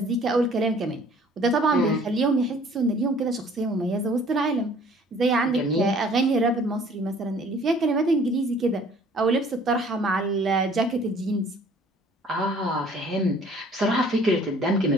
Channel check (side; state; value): both; normal; correlation 0.55